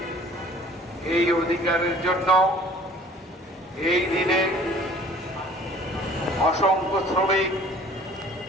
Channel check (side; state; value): both; normal; correlation 0.50